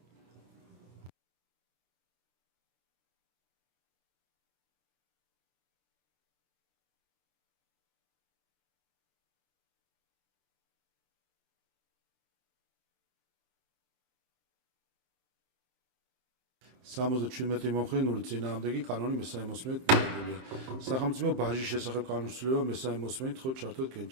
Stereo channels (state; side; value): late; left; 23 ms